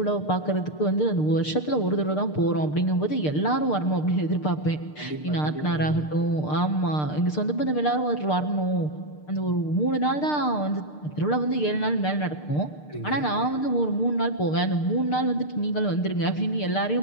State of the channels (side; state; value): right; late; 6.6 ms